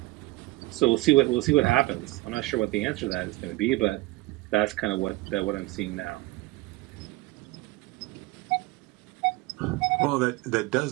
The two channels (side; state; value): left; quieter; 20.5 dB